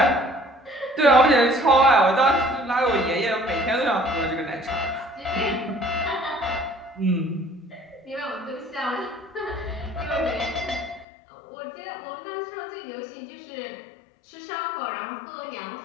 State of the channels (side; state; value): right; drops out; at 11.1 s